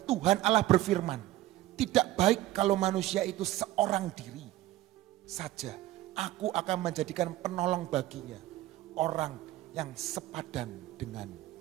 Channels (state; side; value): quieter; left; 15.5 dB